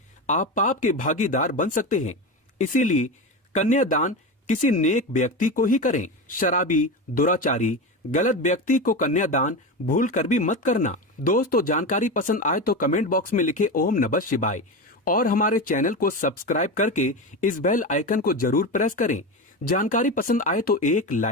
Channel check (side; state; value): both; normal; correlation 0.21